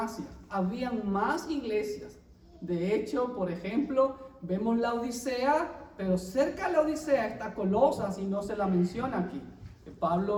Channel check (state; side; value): identical; both; correlation 1.00